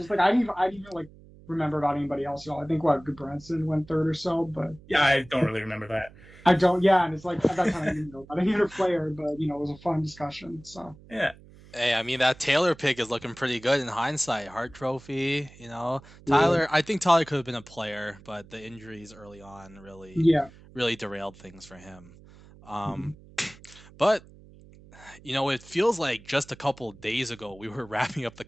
it's like I didn't even like remember about anybody else at all. I think what Goodbranson went third or so, but yeah, I don't really remember that. I don't. Yeah, and it's like at that time I didn't know about any other player, but it was a fun discussion. So Yeah. Hey, I mean, that Taylor pick is looking pretty good in hindsight. Hart Trophy. yeah, I think Tyler could have been a player, but the injuries early on yeah. really derailed things for him. Mhm. Um, but it feels like just a couple days ago we were wrapping up the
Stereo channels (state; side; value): noise; right; hum, 22 dB below the sound